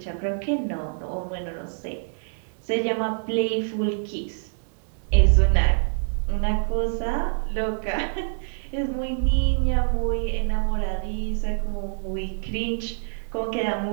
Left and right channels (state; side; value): silent; left; digital silence